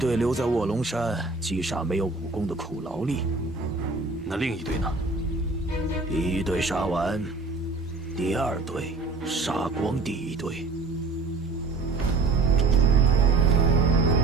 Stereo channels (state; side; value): quieter; left; 3.8 dB